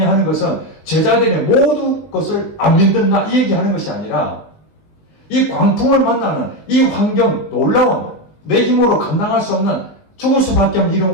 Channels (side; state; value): right; late; 19 ms